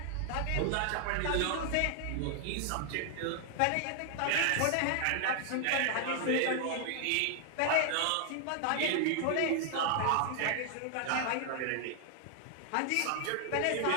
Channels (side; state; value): both; different; correlation 0.00